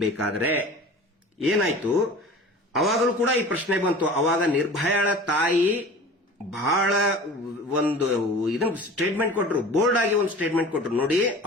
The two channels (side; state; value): both; normal; correlation 0.40